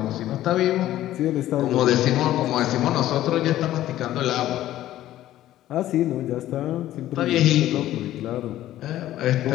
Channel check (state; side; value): quieter; right; 13.8 dB